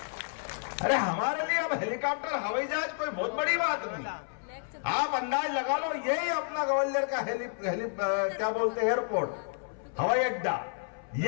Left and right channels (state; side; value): silent; right; 57 dB below the other